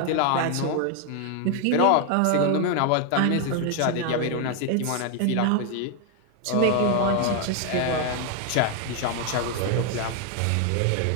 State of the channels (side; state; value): both; different; correlation 0.01